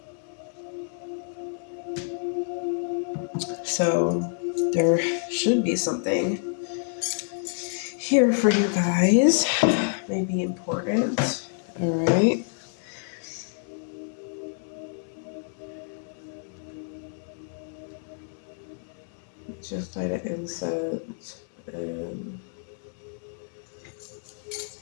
so there should be something here for you guys. Maybe important. All right. Just light an incense and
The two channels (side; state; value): right; silent; digital silence